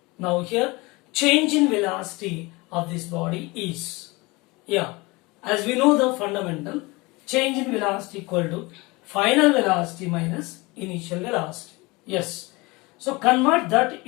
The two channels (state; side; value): quieter; right; 24.1 dB